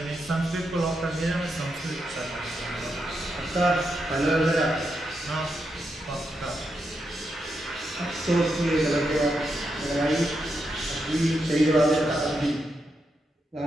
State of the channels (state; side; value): normal; both; correlation 0.84